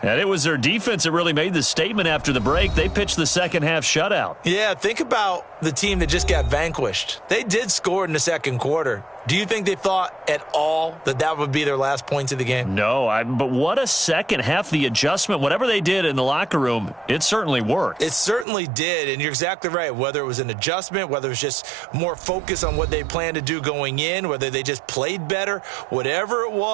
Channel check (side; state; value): left; drops out; at 18.4 s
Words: And it was their defense that really made the statement after the break. They pitched the second half shutout. Yeah, think about the team that just got vanquished. They did score in the second quarter. Do you think they thought at all that that would be their last points of the game? No, but what a second half. The adjustment, whatever they did in the locker room, it certainly worked. It certainly did, and you're exactly right. Whether it was an adjustment, whether it was just more focus on what they planned to do going in, whether they just played better, whatever it